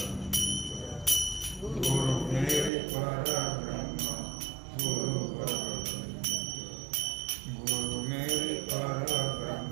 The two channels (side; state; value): left; drops out; at 2.7 s